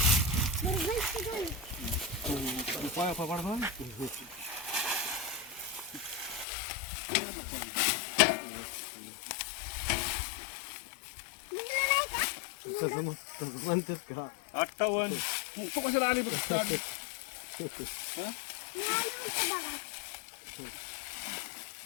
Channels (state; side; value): drops out; right; at 6.5 s